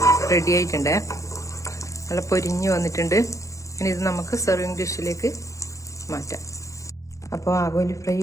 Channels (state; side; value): late; right; 0.15 ms